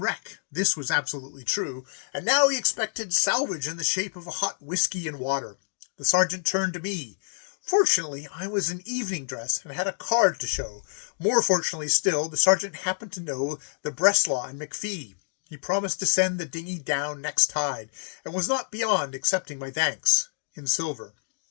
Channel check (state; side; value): silent; right; digital silence